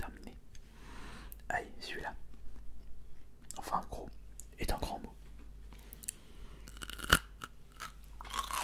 Allez, celui-là. Enfin, gros est un grand mot.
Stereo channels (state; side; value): identical; both; correlation 1.00